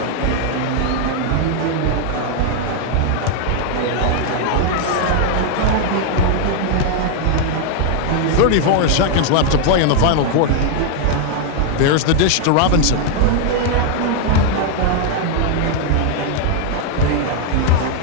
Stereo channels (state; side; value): different; both; correlation 0.00